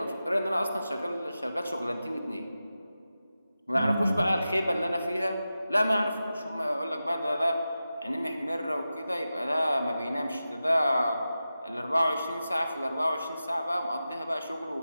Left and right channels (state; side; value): inverted; both; correlation -0.93